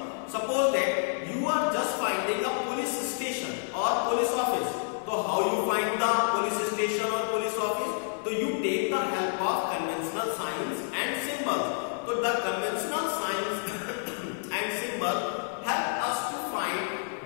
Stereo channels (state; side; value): silent; right; digital silence